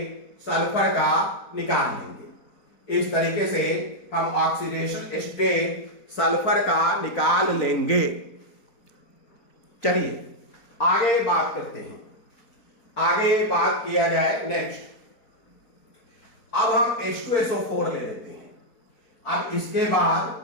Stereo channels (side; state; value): right; late; 4.4 ms